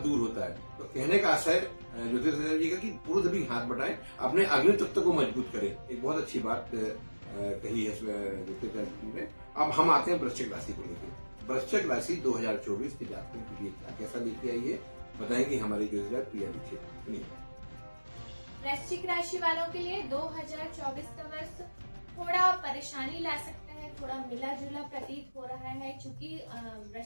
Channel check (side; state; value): both; inverted; correlation -1.00